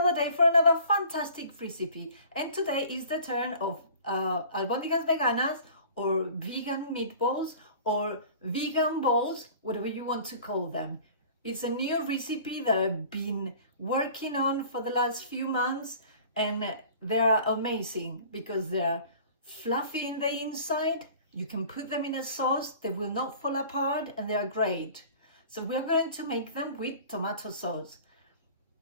day for another fantastic recipe, and today is the turn of albóndigas veganas or vegan meatballs or vegan balls, whatever you want to call them. It's a new recipe that I've been working on for the last few months, and they're amazing because they're fluffy in the inside. You can put them in a sauce, they will not fall apart, and they are great. So we're going to make them with tomato sauce.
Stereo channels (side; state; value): both; inverted; correlation -0.46